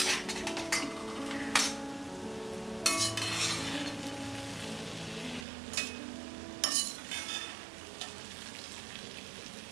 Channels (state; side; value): drops out; left; at 5.5 s